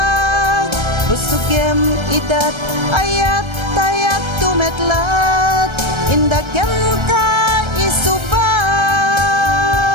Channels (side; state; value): left; late; 1.3 ms